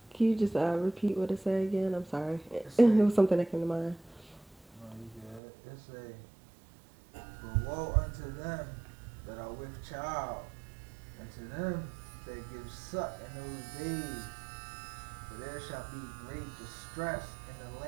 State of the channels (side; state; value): left; drops out; at 5.4 s